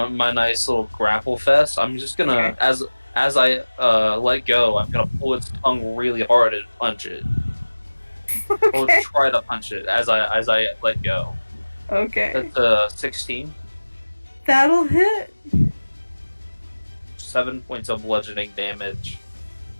my nice little grapple fest. I'm just gonna, Okay. as I let go, I'm gonna pull its tongue really hard and punch it. Or Okay. try to punch it as I let go. Okay. That's 16. That'll hit. 7 points of bludgeoning damage.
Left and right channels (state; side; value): inverted; both; correlation -1.00